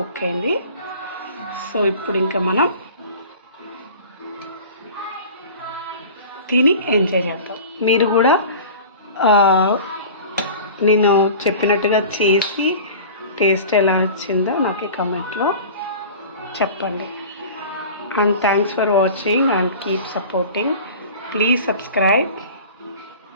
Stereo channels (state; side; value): inverted; both; correlation -0.39